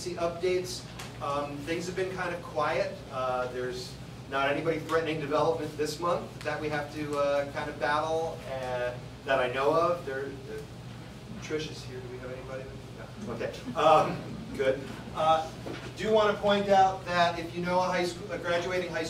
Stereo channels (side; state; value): both; identical; correlation 1.00